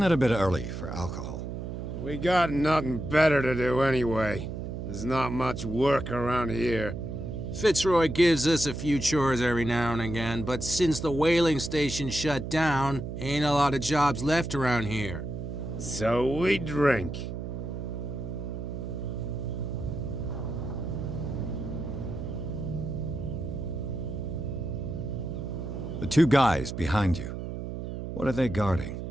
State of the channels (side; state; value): right; noise; hum, 6 dB below the sound